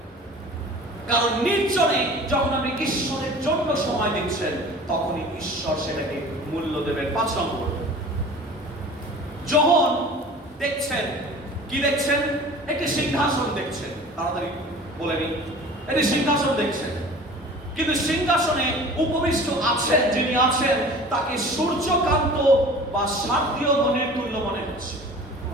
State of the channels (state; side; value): normal; both; correlation 0.42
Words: কারণ নির্জনে যখন আপনি ঈশ্বরের জন্য সময় দিচ্ছেন, তখনই ঈশ্বর সেটাকে মূল্য দেবেন। 5 নম্বর, যোহন দেখছেন, কি দেখছেন? একটি সিংহাসন দেখছেন। তাড়াতাড়ি বলে নি, এটি সিংহাসন দেখছেন, কিন্তু সিংহাসনে উপবিষ্ট আছেন যিনি আছেন তাকে সূর্যকান্ত বা শারদীয় মণির তুল্য মনে হচ্ছে।